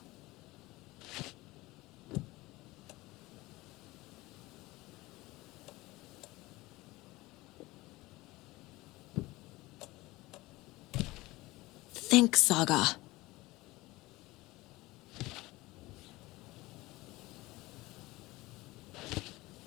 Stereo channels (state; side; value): quieter; right; 20.1 dB